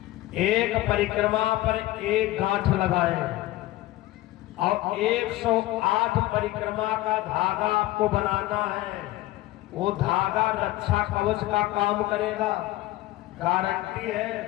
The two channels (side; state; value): right; quieter; 16.8 dB